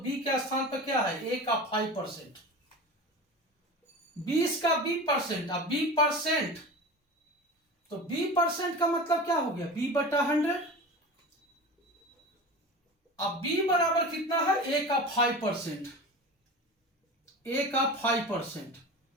के स्थान पर क्या है, ए का 5%, 20 का बी परसेंट, अब बी परसेंट, तो बी परसेंट का मतलब क्या हो गया, बी बटा 100। अब बी बराबर कितना है, ए का 5%, ए का 5%,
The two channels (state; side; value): normal; both; correlation 0.32